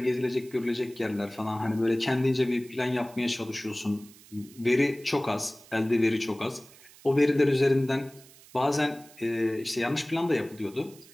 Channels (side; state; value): right; noise; hiss, 23 dB below the sound